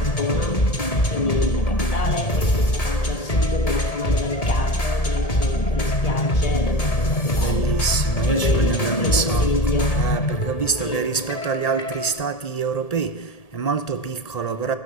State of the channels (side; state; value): right; late; 1.8 ms